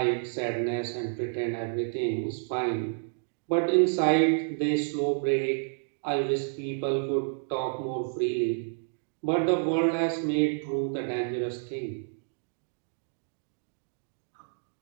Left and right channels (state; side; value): silent; left; digital silence